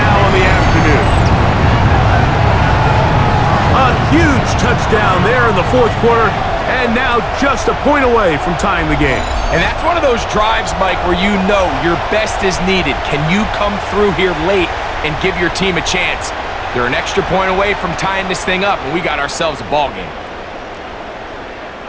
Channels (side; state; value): both; identical; correlation 1.00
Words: on the afternoon. A huge touchdown there in the fourth quarter, and now just a point away from tying the game. And that's one of those drives, Mike, where you know your best is needed. Can you come through here late and give your team a chance? They're an extra point away from tying this thing up, and we got ourselves a ball game.